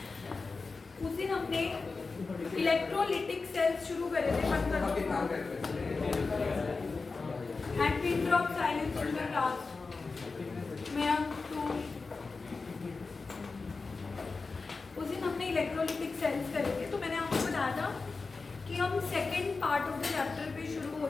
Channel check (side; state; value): right; quieter; 4.1 dB